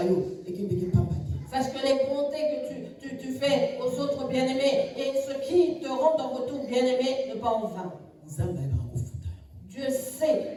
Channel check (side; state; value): both; identical; correlation 1.00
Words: Sache que les bontés que tu fais aux autres bien-aimés et ce qui te rendent en retour bien-aimé ne pas en vain. Dieu sait